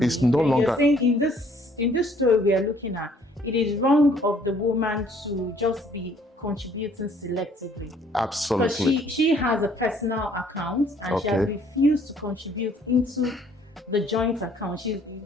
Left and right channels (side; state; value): both; normal; correlation 0.61